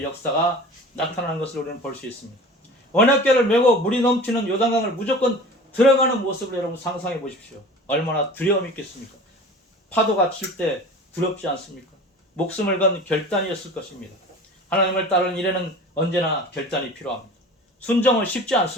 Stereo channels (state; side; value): normal; both; correlation 0.39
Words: 역사가 나타나는 것을 우리는 볼 수 있습니다. 언약궤를 메고 물이 넘치는 요단강을 무조건 들어가는 모습을 여러분 상상해 보십시오. 얼마나 두려움이 있겠습니까? 파도가 칠 때 두렵지 않습니까? 목숨을 건 결단이었을 것입니다. 하나님을 따르는 일에는 언제나 결단이 필요합니다. 순종은 쉽지